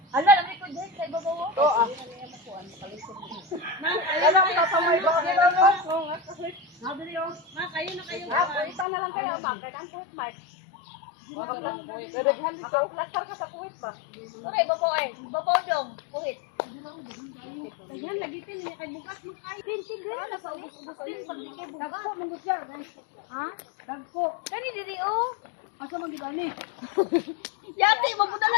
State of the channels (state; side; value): drops out; right; at 8.8 s